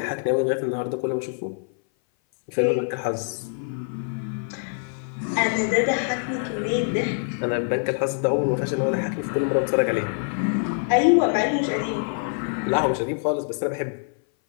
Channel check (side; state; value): right; silent; 58 dB below the other